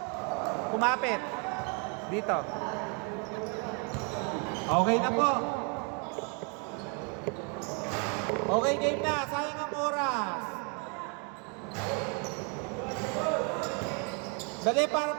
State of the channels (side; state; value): left; quieter; 36.3 dB